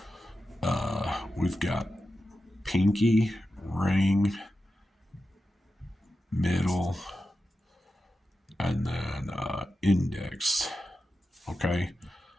We've got pinky, ring, middle, and then index. Okay.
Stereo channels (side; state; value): both; normal; correlation 0.91